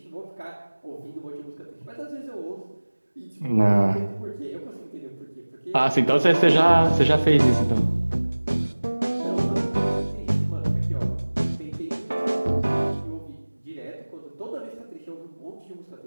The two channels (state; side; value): inverted; both; correlation -1.00